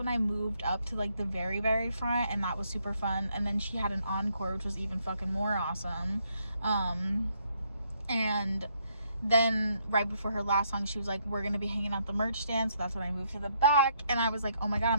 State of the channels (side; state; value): both; inverted; correlation -0.73